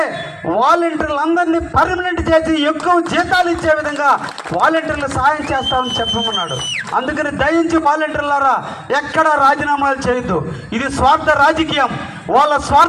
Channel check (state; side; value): identical; both; correlation 1.00